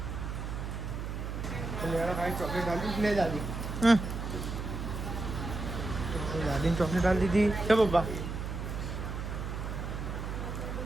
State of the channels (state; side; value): noise; right; hum, 5 dB below the sound